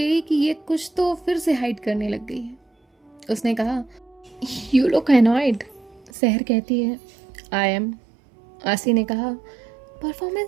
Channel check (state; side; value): drops out; left; at 6.1 s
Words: कि ये कुछ तो फिर से हाइड करने लग गई है। उसने कहा, यू लुक एनॉयड। सहर कहती है, आई एम। आसी ने कहा,